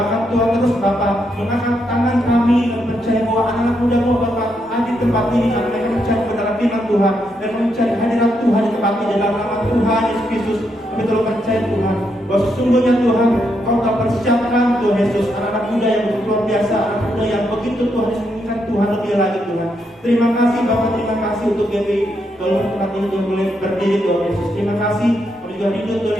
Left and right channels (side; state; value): both; normal; correlation 0.79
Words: Tuhan terus Bapa mengangkat tangan kami dan percaya bahwa anak-anak muda mau Bapa ada di tempat ini, dan mereka mencari kebenaran firman Tuhan dan mencari hadirat Tuhan di tempat ini dalam nama Tuhan Yesus Kristus. Kami telah percaya Tuhan bahwa sesungguhnya Tuhan Kau telah persiapkan Tuhan Yesus anak-anak muda yang begitu luar biasa, anak muda yang begitu Tuhan Yesus menginginkan Tuhan lebih lagi Tuhan. Terima kasih Bapak, terima kasih untuk GPI tolong tempat ini Tuhan boleh berdiri Tuhan Yesus. Terima kasih kami juga rindu Tuhan